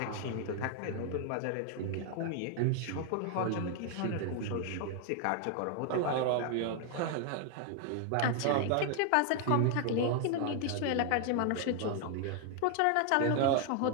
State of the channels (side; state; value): both; different; correlation 0.00